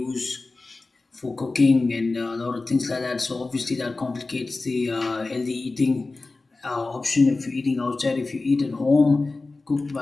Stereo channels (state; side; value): quieter; right; 3.5 dB